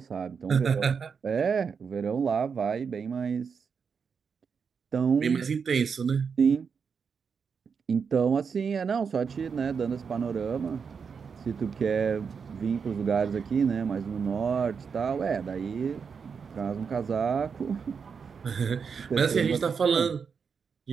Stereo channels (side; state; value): left; quieter; 6.1 dB